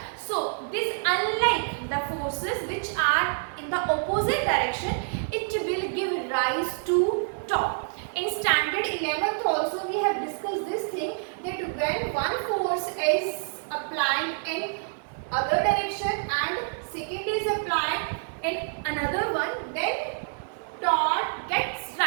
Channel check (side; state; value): left; silent; digital silence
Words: so this, unlike the forces which are in the opposite direction, it will give rise to torque. In standard 11th also we have discussed this thing, that when one force is applied in other direction and second is applied in another one, then torque gets